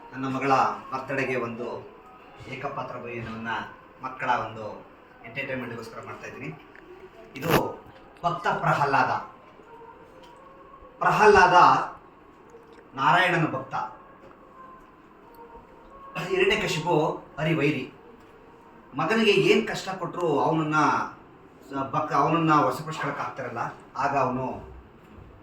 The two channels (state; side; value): identical; both; correlation 1.00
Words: ನನ್ನ ಮಗಳ ಬರ್ತಡೆಗೆ ಒಂದು ಏಕಪಾತ್ರ ಭೋಜನವನ್ನು ಮಕ್ಕಳ ಒಂದು ಎಂಟರ್ಟೈನ್ಮೆಂಟ್ಗೋಸ್ಕರ ಮಾಡ್ತಾ ಇದ್ದೀನಿ. ಇದು ಭಕ್ತ ಪ್ರಹ್ಲಾದ ನಾರಾಯಣನ ಭಕ್ತ. ಹಿರಣ್ಯಕಶಿಪು ಹರಿವೈರಿ. ಮಗನಿಗೆ ಏನು ಕಷ್ಟ ಕೊಟ್ಟರು ಅವನನ್ನ ವಶಪಡಿಸ್ಕೊಳಕ್ಕೆ ಆಗ್ತಾರಲ್ಲ, ಆಗ ಅವನು